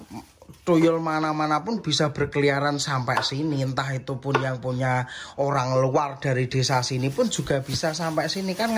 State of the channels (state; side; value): identical; both; correlation 1.00